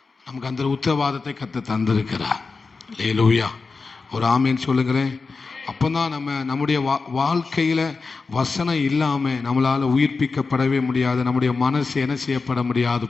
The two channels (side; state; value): right; quieter; 4.3 dB